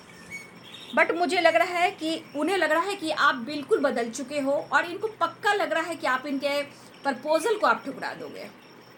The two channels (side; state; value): both; identical; correlation 1.00